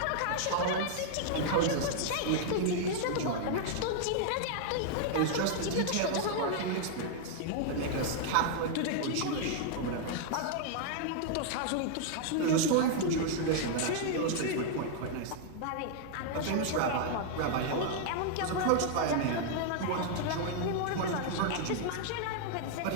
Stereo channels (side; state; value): both; different; correlation 0.00